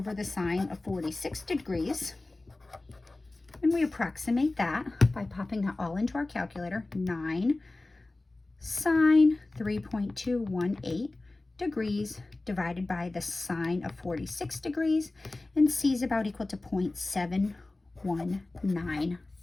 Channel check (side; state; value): right; quieter; 3.0 dB